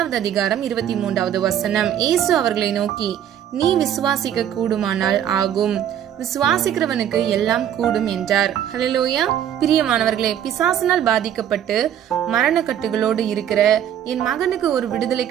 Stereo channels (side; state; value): left; quieter; 10.2 dB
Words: அதிகாரம் 23வது வசனம். இயேசு அவர்களை நோக்கி, நீ விசுவாசிக்க கூடுமானால் ஆகும், விசுவாசிக்கிறவனுக்கு எல்லாம் கூடும் என்றார். ஹல்லேலூயா. பிரியமானவர்களே, பிசாசினால் பாதிக்கப்பட்டு மரணக்கட்டுகளோடு இருக்கிற என் மகனுக்கு ஒரு விடுதலை